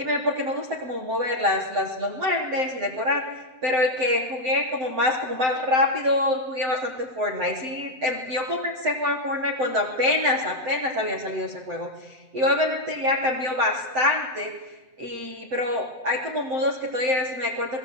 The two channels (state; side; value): late; left; 7.7 ms